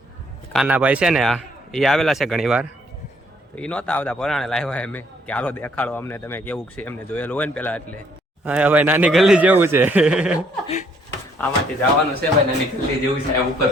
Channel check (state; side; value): normal; both; correlation 0.66